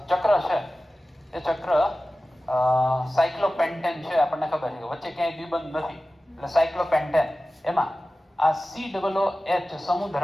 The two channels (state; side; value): normal; both; correlation 0.96